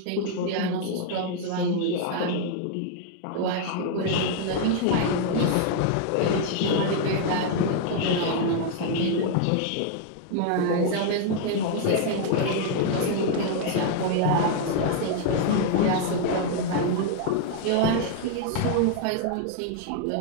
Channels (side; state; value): both; different; correlation 0.00